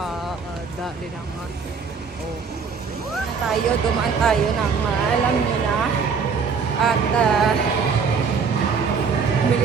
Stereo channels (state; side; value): quieter; left; 5.7 dB